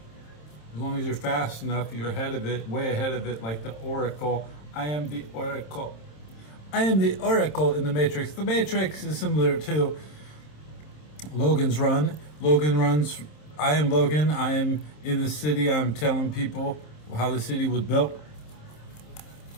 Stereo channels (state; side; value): late; right; 27 ms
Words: As long as you're fast enough, you're ahead of it, way ahead of it, like the Oracle. I am the Oracle. I am the Oracle in the Matrix. The Matrix is similar to Logan's Run. Logan runs, I am Logan. I am in the city. I'm telling people how the city was built.